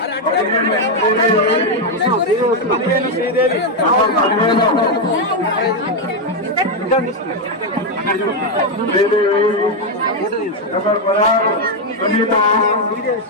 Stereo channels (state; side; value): normal; both; correlation 0.04